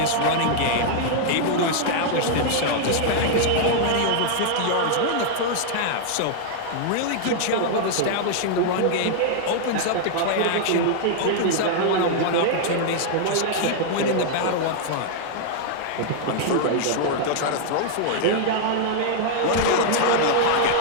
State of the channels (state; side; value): different; both; correlation -0.01